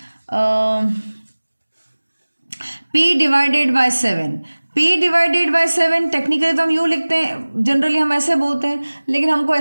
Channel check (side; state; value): both; inverted; correlation -1.00